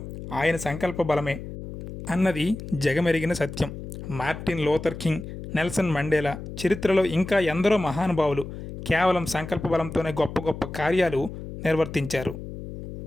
ఆయన సంకల్ప బలమే అన్నది జగమెరిగిన సత్యం. Martin Luther King, Nelson Mandela, చరిత్రలో ఇంకా ఎందరో మహానుభావులు కేవలం సంకల్ప బలంతోనే గొప్ప గొప్ప కార్యాలు నిర్వర్తించారు.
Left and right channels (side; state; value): left; noise; hum, 10 dB below the sound